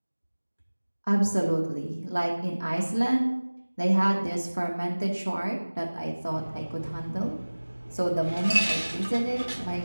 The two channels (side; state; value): both; inverted; correlation -1.00